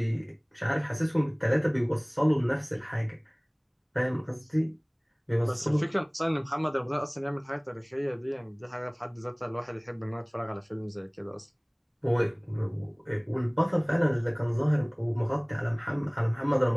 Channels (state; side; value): identical; both; correlation 1.00